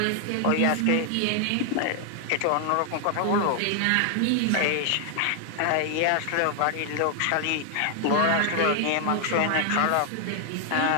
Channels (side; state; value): both; different; correlation 0.00